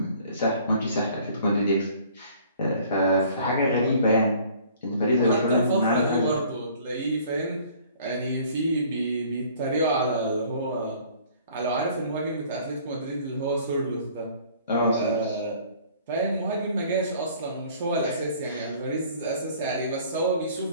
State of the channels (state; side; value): inverted; both; correlation -0.54